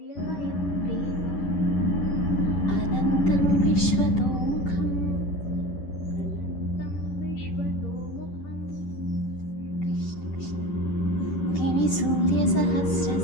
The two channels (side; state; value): right; late; 10 ms